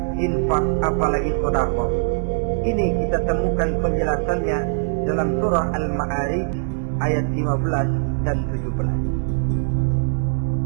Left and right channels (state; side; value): silent; left; digital silence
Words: infak, apalagi sedekah. Ini kita temukan penjelasannya dalam surah Al-Ma'arij ayat 15 dan